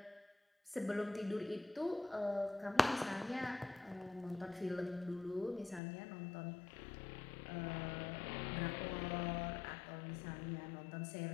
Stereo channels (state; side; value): drops out; right; at 5.8 s